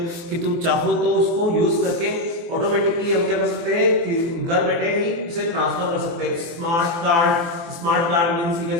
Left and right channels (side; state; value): left; late; 24 ms